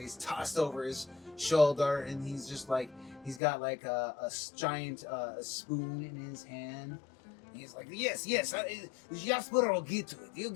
he's tossed over his shoulder, and he's just like he's got like a giant spoon in his hand. And he's like, yes, Jasper will get to it. He'll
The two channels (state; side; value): drops out; right; at 3.4 s